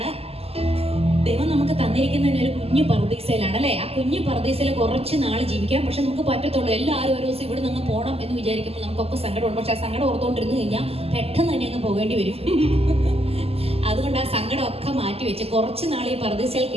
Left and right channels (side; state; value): left; late; 0.29 ms